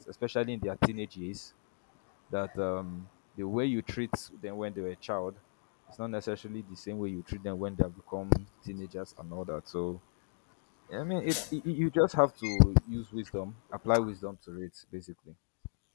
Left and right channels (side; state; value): right; silent; digital silence